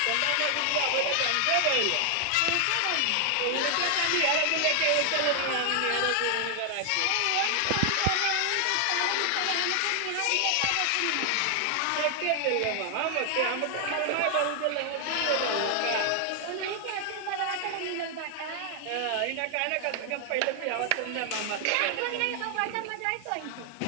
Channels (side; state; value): both; different; correlation 0.00